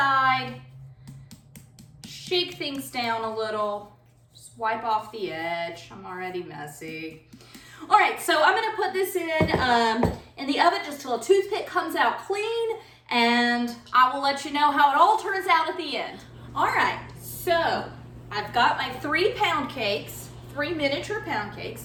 shake things down a little, just wipe off the edge. I'm already messy. All right, so I'm gonna put this in the oven just till a toothpick comes out clean, and I will let you know how it all turns out at the end. All right, so I've got my 3 pound cakes, 3 miniature pound cakes.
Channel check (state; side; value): identical; both; correlation 1.00